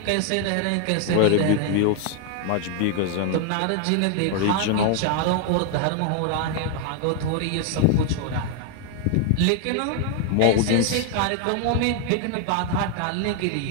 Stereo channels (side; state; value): both; different; correlation 0.00